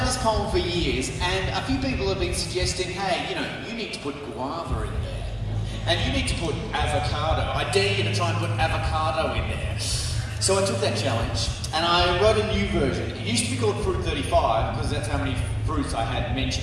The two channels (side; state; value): both; identical; correlation 1.00